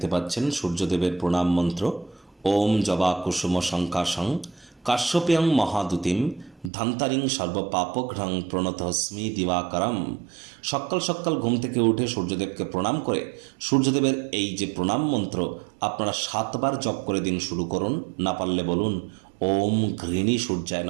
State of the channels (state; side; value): drops out; left; at 6.7 s